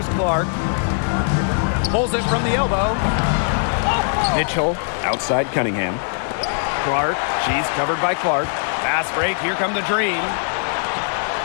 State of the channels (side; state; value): right; silent; 65 dB below the other